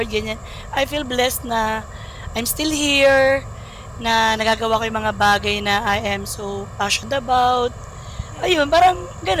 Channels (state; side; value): identical; both; correlation 1.00